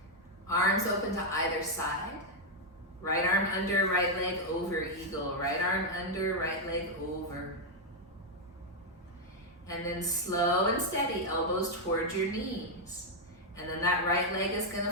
Arms open to either side. Right arm under, right leg over, eagle. Right arm under, right leg over. And then slow and steady, elbows towards your knees. And then that right leg is gonna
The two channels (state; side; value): normal; both; correlation 0.00